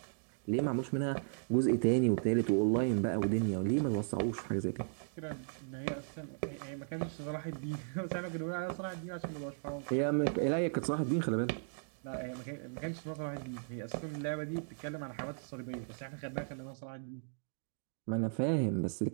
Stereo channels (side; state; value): left; silent; digital silence